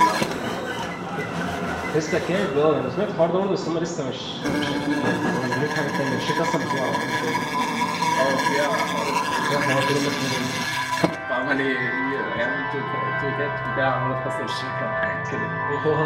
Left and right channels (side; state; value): both; identical; correlation 1.00